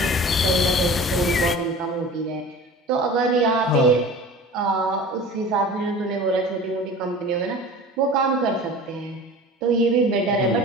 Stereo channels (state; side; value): normal; both; correlation 0.39